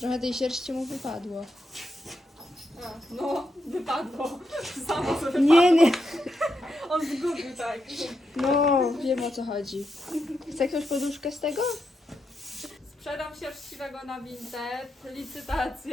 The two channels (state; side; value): normal; both; correlation 0.84